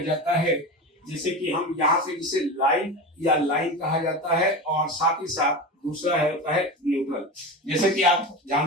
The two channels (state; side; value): normal; both; correlation 0.25